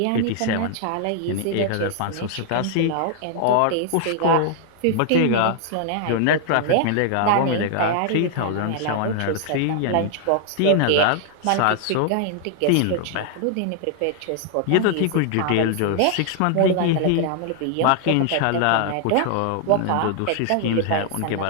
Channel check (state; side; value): different; both; correlation 0.00